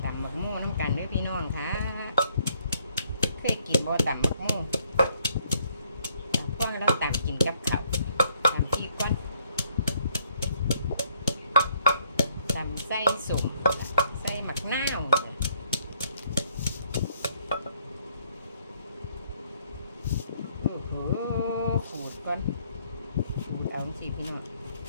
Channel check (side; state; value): both; inverted; correlation -0.67